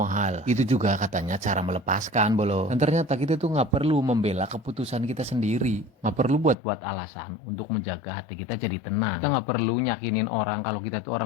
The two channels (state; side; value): drops out; right; at 6.6 s